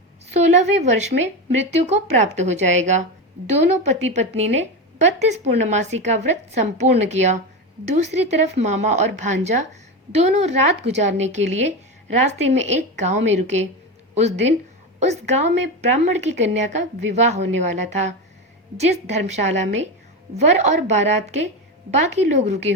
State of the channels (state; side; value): normal; both; correlation 0.18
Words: 16वें वर्ष में मृत्यु को प्राप्त हो जाएगा। दोनों पति पत्नी ने 32 पूर्णमासी का व्रत संपूर्ण किया। दूसरी तरफ मामा और भांजा दोनों रात गुजारने के लिए रास्ते में एक गांव में रुके। उस दिन उस गांव में ब्राह्मण की कन्या का विवाह होने वाला था। जिस धर्मशाला में वर और बारात के बाकी लोग रुके